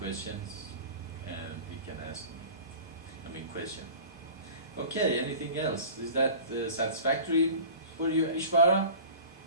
he can ask me. Question. Okay, anything else? Is that satisfactory for you, Ishvara?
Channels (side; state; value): both; inverted; correlation -0.39